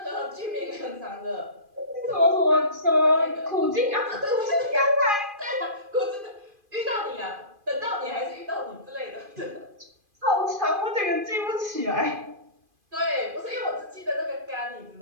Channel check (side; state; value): left; late; 2.5 ms